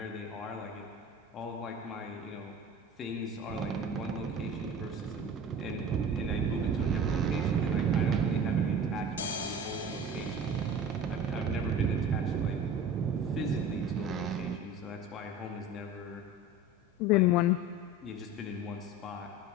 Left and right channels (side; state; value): both; normal; correlation 0.37